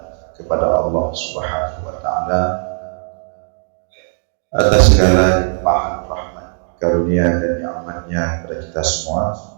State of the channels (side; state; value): left; silent; 64 dB below the other